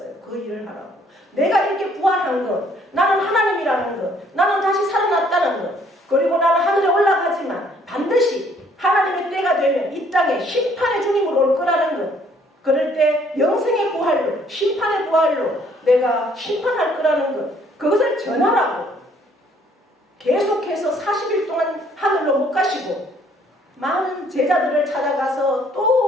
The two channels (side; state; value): both; normal; correlation 0.63